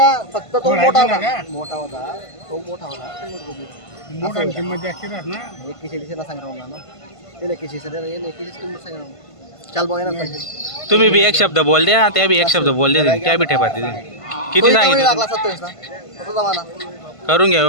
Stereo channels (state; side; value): late; right; 1.5 ms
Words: फक्त तो मोठा होता. तो मोठा होता. मोठा किंमत जास्त राहत ना. 41 सांगितलं ना. त्याला 41 किंमत सांगितलं. चाल बघा ना. तुम्ही बी एक शब्द बोल द्या, त्या बी एक शब्द बोल द्या. त्या बी ठेपाते किती सांगितलं? 27 ना. तो जमाना करून घ्या